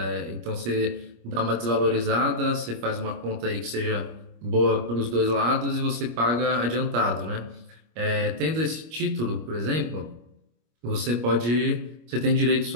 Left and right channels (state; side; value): late; left; 25 ms